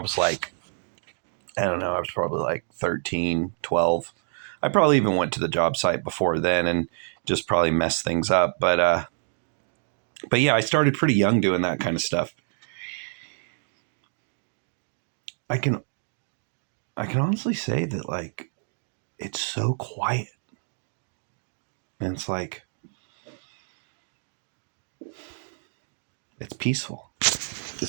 like, I don't know, I was probably like 13, 12. I probably even went to the job site before then and just probably messed things up. But yeah, I started pretty young doing that kind of stuff. I can honestly say that, like, it's so quiet. And it's like, it's peaceful.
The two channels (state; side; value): silent; left; digital silence